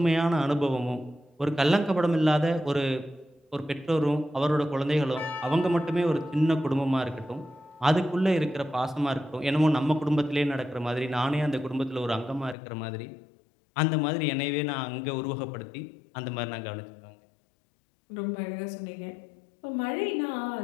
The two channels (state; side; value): drops out; right; at 12.6 s